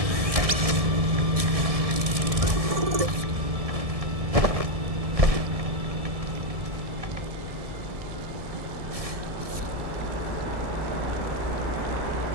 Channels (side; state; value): left; late; 1.7 ms